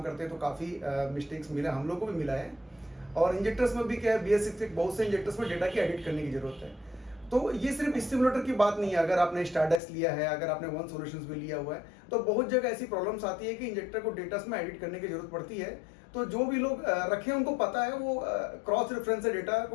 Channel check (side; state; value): right; drops out; at 9.8 s